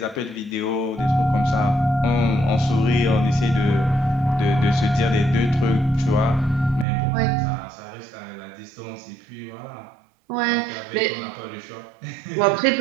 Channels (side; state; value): left; drops out; at 6.9 s